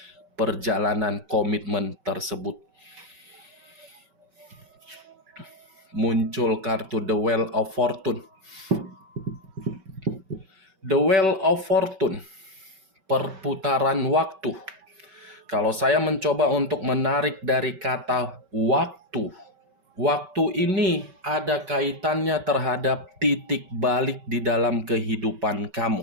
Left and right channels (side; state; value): left; late; 5.2 ms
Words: perjalanan komitmen tersebut. Muncul kartu The Wheel of Fortune. The Wheel of Fortune, perputaran waktu. Kalau saya mencoba untuk menarik dari kata waktu, waktu ini ada kaitannya terhadap titik balik di dalam kehidupan kamu.